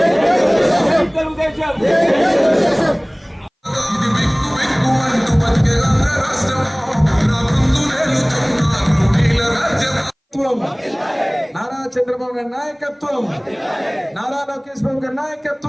నారా చంద్రబాబు గారి నాయకత్వం, నారా లోకేష్ బాబు గారి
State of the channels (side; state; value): both; identical; correlation 1.00